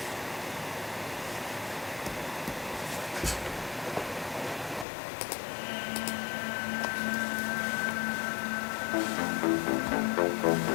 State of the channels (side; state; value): right; drops out; at 4.9 s